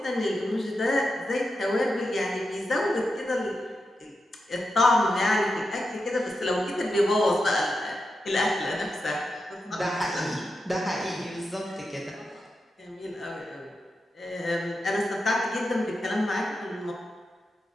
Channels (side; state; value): both; normal; correlation 0.88